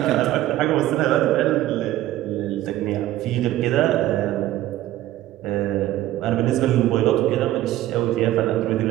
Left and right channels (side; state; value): left; quieter; 14.7 dB